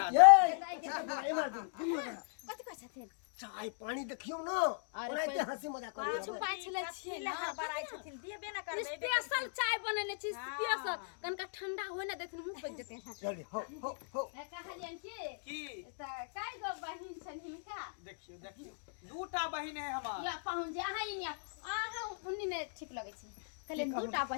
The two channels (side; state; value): right; silent; digital silence